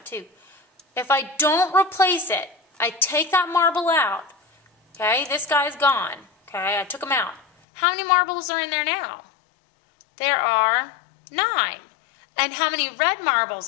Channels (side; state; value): right; drops out; at 7.5 s